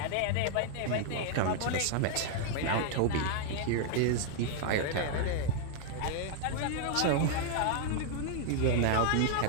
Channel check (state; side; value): different; both; correlation 0.00